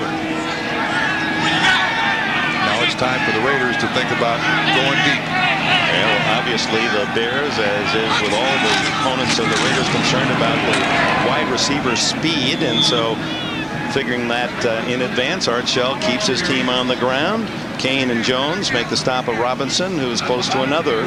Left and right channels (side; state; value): both; identical; correlation 1.00